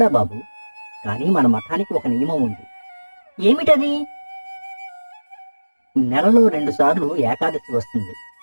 బాబు, కానీ మన మఠానికి ఒక నియమం ఉంది. ఏమిటది? నెలలో 2 సార్లు ఏకాదశి వస్తుంది.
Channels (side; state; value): both; inverted; correlation -1.00